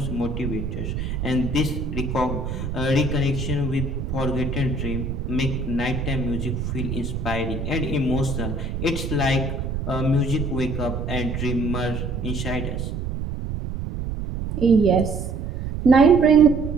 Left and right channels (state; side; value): noise; right; rumble, 4 dB below the sound